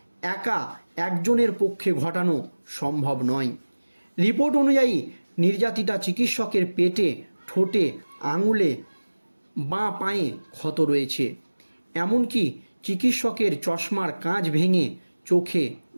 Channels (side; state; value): both; inverted; correlation -1.00